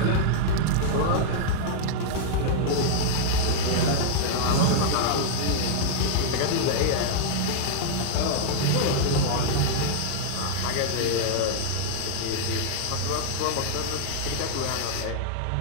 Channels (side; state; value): both; different; correlation -0.01